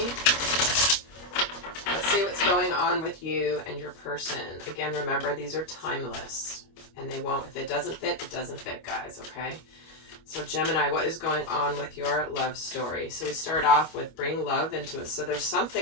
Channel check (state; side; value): late; right; 25 ms